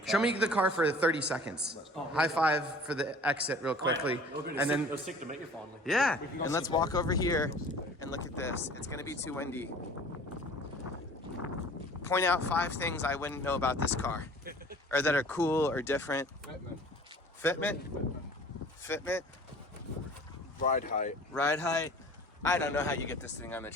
Show me the car for 30 seconds. High five for the exit real quickly. And then it was sick to meet you finally. Yeah, and let's walk over here and look at this. It's gonna be too windy. Point out 5 things I wouldn't know about this car, or that are cool or different. Fitment. Ride height. Ride height. I don't know how you get this thing on the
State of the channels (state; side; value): normal; both; correlation 0.47